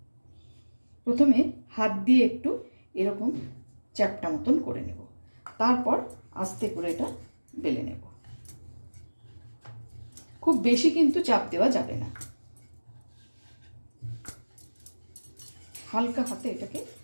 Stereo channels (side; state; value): both; inverted; correlation -1.00